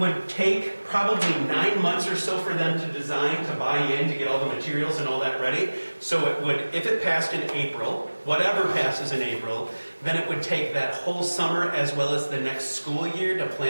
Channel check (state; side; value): inverted; both; correlation -1.00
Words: take probably 9 months or so for them to design, to buy in, to get all the materials and all that ready. So it would, if it passed in April, whatever passes in April, then it would take that whole summer as well as the next school year to